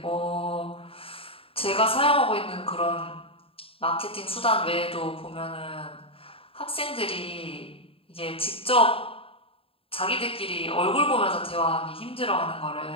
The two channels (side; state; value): right; late; 0.27 ms